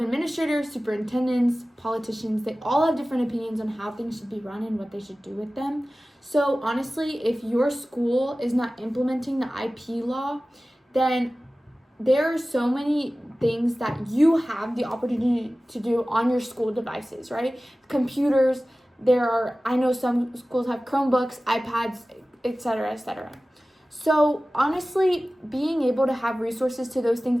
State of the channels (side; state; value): both; normal; correlation 0.97